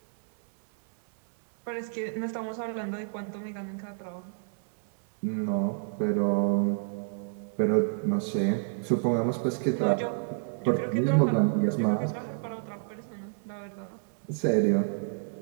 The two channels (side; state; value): left; silent; digital silence